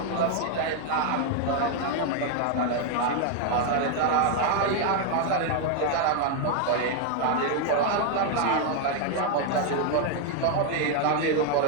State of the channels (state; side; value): different; both; correlation 0.00